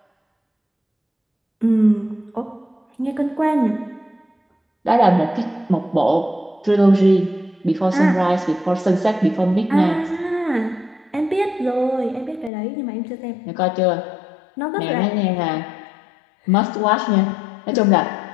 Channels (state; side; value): drops out; right; at 12.5 s